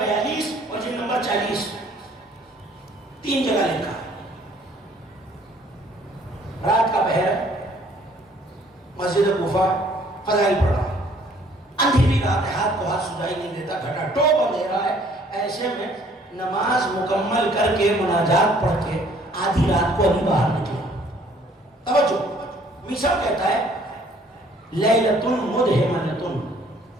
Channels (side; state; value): both; normal; correlation 0.59